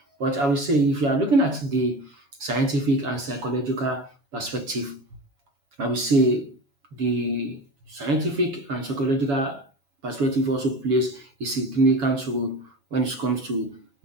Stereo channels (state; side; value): late; left; 7.1 ms